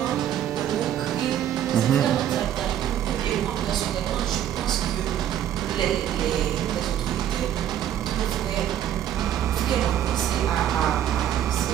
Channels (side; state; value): left; quieter; 10.8 dB